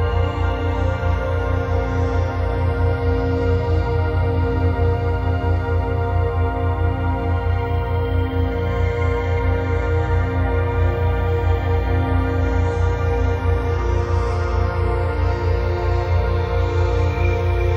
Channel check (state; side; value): identical; both; correlation 1.00